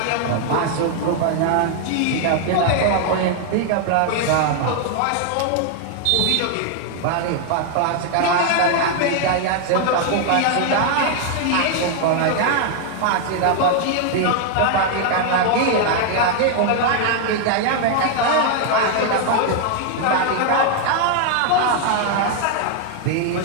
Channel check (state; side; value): different; both; correlation 0.00